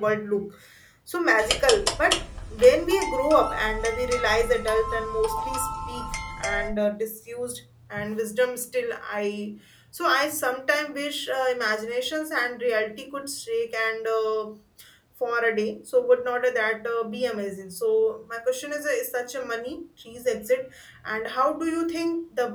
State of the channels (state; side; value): identical; both; correlation 1.00